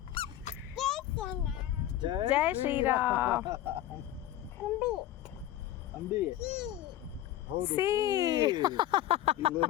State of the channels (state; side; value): quieter; right; 13.2 dB